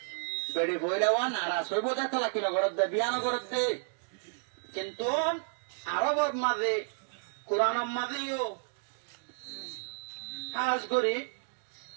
বেড়ে বইলে নারাজ হইব দেখো লাকি নগরত দে বিয়া নগরত দে কিন্তু আরবর মাঝে কোরআনের মাঝেও কাজ করি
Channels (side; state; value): left; silent; digital silence